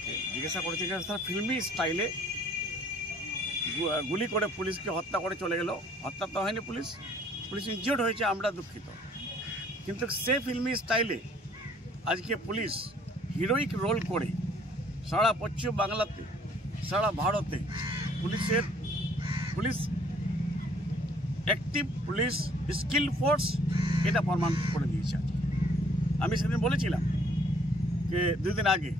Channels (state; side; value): normal; both; correlation 0.59